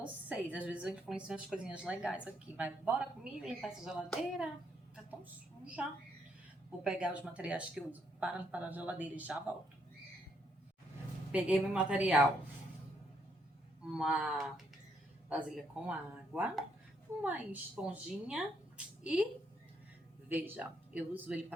Às vezes eu influencio umas coisinhas legais aqui, mas bora comigo limpar essa geladeira. Tá tão suja. Vou pegar os materiais que eu uso para limpar a geladeira e já volto. Peguei meu material. Uma vasilha com água, uma esponjinha e veja, eu uso ele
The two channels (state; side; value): normal; both; correlation 0.74